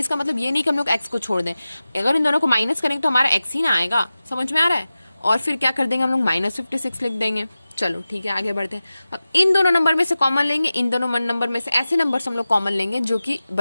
मतलब ये नहीं कि हम लोग x को छोड़ दें। अगर इन दोनों को माइनस करेंगे तो हमारा x ही ना आएगा, समझ में आ रहा है। और फिर क्या कर देंगे हम लोग, -56 लिख देंगे। चलो ठीक है, आगे बढ़ते हैं। अब इन दोनों नंबर में से कॉमन लेंगे, इन दोनों नंबर में से ऐसे नंबर्स हम लोग कॉमन लेंगे जो कि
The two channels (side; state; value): both; inverted; correlation -0.95